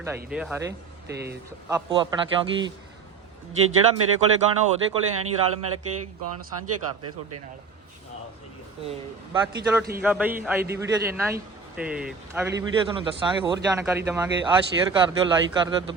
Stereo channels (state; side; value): quieter; left; 5.1 dB